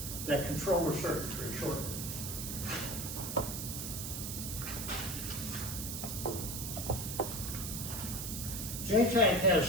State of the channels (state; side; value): noise; right; hiss, 5 dB below the sound